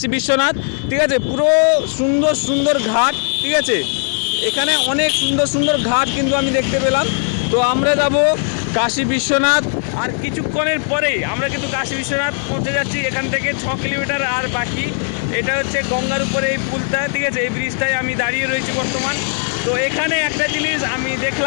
বিশ্বনাথ। ঠিক আছে, পুরো সুন্দর সুন্দর ঘাট। ঠিক আছে, এখানে অনেক সুন্দর সুন্দর ঘাট কিন্তু আমি দেখতে পেলাম। তো আমরা যাব কাশী বিশ্বনাথ, আর কিছুক্ষণের পরেই আমরা কিন্তু কাশী বিশ্বনাথ পৌঁছে যাচ্ছি। এখান থেকে 6 কিলোমিটার আর বাকি। এটা হচ্ছে গঙ্গার উপরে এই পুলটা, ঠিক আছে, এই ব্রিজটায় আমি দাঁড়িয়ে রয়েছি বর্তমান। তো এখানে একটা জিনিস আমি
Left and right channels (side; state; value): right; silent; 67 dB below the other